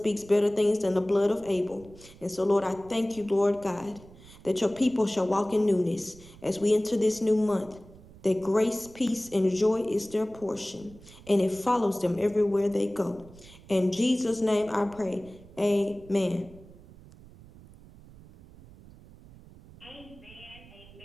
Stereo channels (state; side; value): noise; right; rumble, 21 dB below the sound